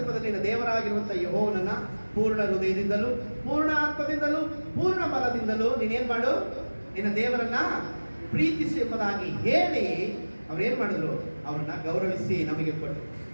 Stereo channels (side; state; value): both; inverted; correlation -1.00